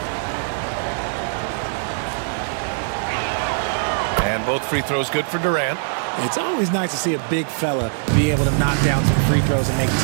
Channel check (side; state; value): left; silent; digital silence